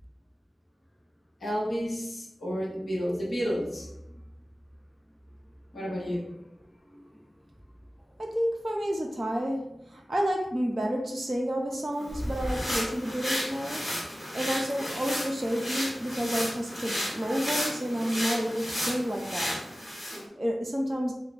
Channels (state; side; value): normal; both; correlation 0.96